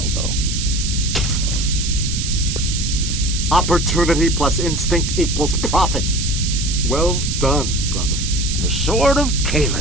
though. Opportunity plus instinct equals profit. Well done, brother. The sword of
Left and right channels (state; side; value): noise; right; hiss, 4 dB below the sound